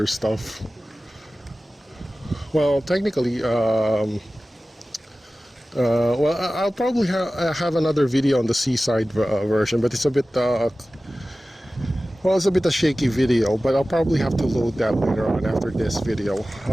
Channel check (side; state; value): both; normal; correlation 0.96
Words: stuff. Well, technically, well, I'll probably have another video on the seaside version, but it's a bit, well, it's a bit a shaky video, but I'll probably have to load that later on after this video.